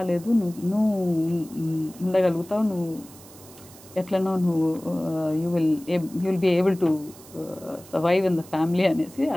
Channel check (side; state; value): right; noise; hiss, 21 dB below the sound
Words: నువ్వు ఉండగలుగుతావు, నువ్వు ఎట్లనో నువ్వు you will be able to survive in the family అనేసి